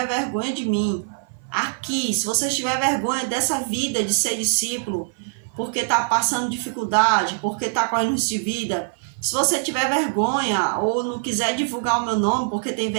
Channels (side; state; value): left; silent; 56 dB below the other